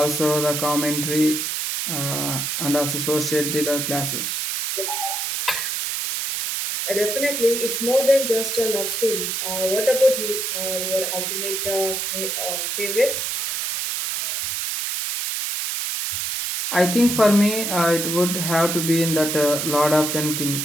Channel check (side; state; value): right; noise; hiss, 1 dB below the sound